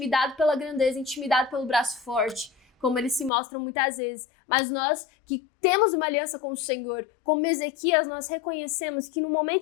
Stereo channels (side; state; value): right; drops out; at 3.3 s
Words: pela grandeza, intimidado pelo braço forte, como eles se mostram muitas vezes. Mas nós que temos uma aliança com o Senhor, como Ezequias, nós reconhecemos que no